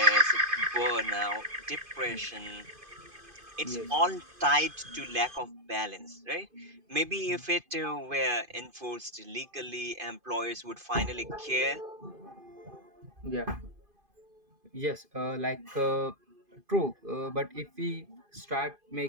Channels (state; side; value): late; left; 2.5 ms